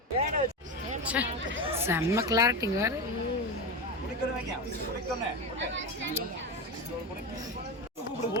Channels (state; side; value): normal; both; correlation 0.19